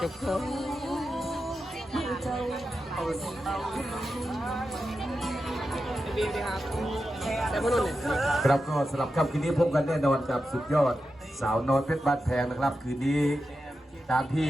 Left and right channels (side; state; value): both; normal; correlation 0.90